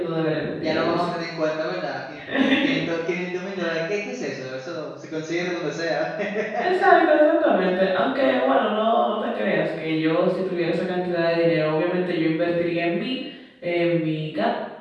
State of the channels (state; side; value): identical; both; correlation 1.00